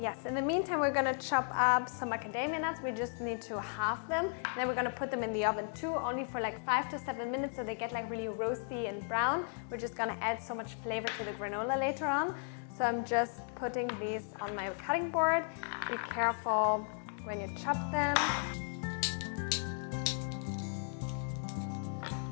Yes, in the meantime, we're gonna chop up some macadamia nuts. We just need to halve them. And then we're gonna put them in the oven too, only for like 5 to 7 minutes so they get like really roasty and brown. We're just gonna add so much flavor to the granola later on. So I'm just putting these on my cutting board. Be careful when you chop them.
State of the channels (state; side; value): silent; right; 54 dB below the other